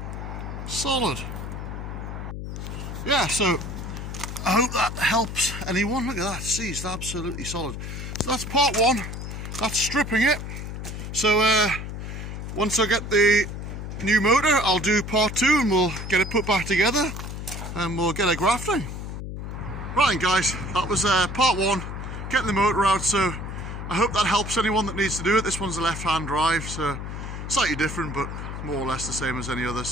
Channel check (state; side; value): noise; left; hum, 7 dB below the sound